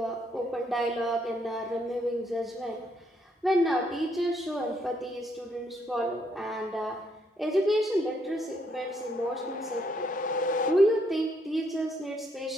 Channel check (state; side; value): normal; both; correlation 0.72